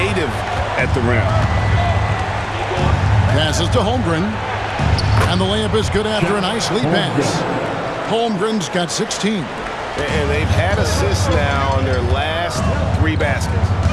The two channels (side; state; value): both; identical; correlation 1.00